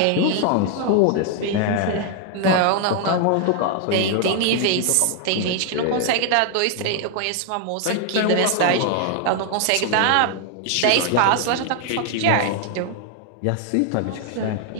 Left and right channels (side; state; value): both; different; correlation 0.00